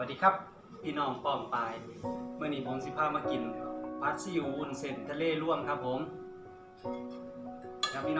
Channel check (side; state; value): both; identical; correlation 1.00